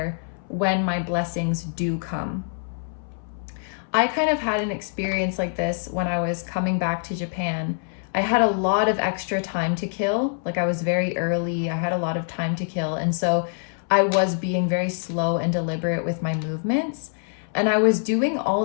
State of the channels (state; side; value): silent; right; 60 dB below the other